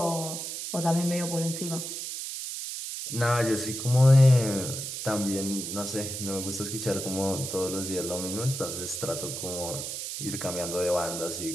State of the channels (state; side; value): noise; right; hiss, 6 dB below the sound